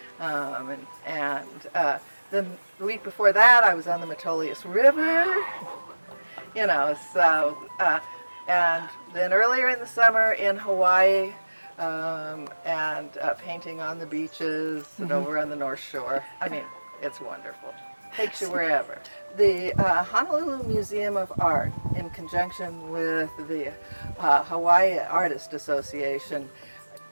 and then the week before that, I was on the Metolius River, you know, so, and then earlier in the summer in Hawaii, and painting on the beaches and over on the North Shore. I mean, it's wonderful. Takes you wherever. The Honolulu Museum of Art, in conjunction with the Hawaii Artist Association,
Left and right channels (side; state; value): both; inverted; correlation -1.00